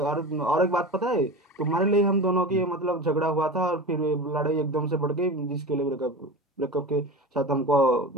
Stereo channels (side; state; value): both; normal; correlation 0.30